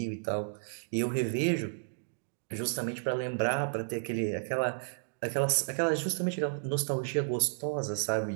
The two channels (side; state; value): left; silent; digital silence